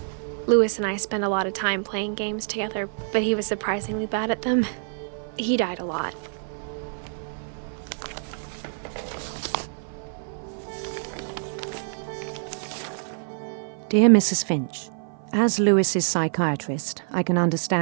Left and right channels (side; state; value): left; silent; 55 dB below the other